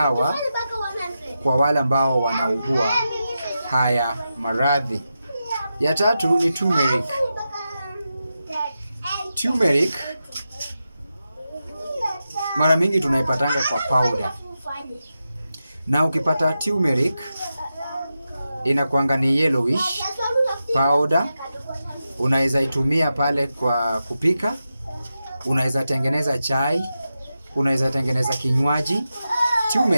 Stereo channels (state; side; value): inverted; both; correlation -0.90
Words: kwa wale ambao wanaugua haya maradhi. Ya tatu ni turmeric. Turmeric mara mingi tunaipatanga kwa powder. Na ukipata turmeric inakuanga ni yellowish powder. Unaweza itumia pale kwa kupika, unaweza tengeneza chai, unaweza tengeneza kinywaji.